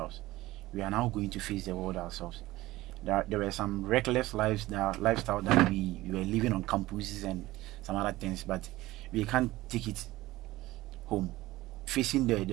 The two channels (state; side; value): quieter; left; 17.8 dB